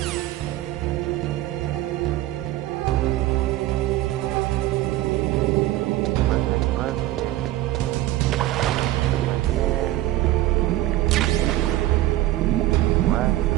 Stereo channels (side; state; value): left; quieter; 15.6 dB